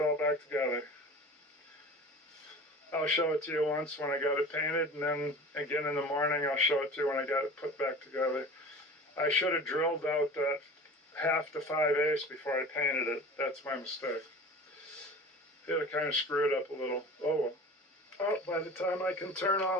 back together. I'll show it to you once when I got it painted, and then again in the morning I'll show it to you when I got it put back together. I should have drilled out that 1/2 to 5/8 before I painted it. That's my mistake. Yeah, I kind of screwed up a little. Oh well. Oh, by the time I can turn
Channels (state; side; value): normal; both; correlation 0.38